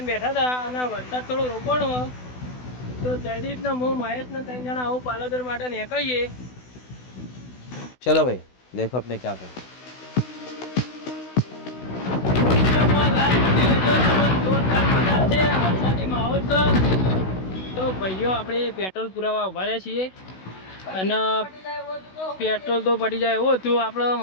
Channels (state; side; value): late; right; 16 ms